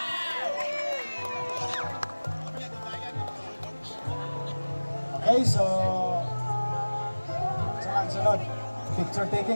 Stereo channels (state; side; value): inverted; both; correlation -1.00